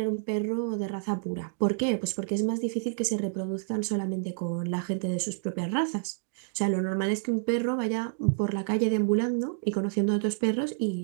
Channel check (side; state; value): left; silent; digital silence